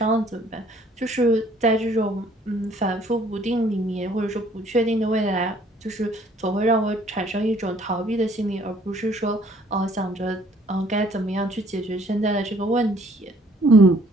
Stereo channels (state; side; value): normal; both; correlation 0.60